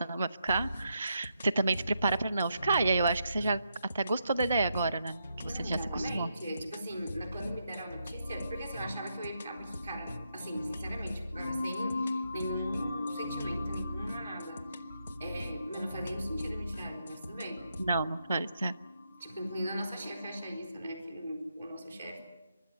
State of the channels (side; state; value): both; inverted; correlation -0.82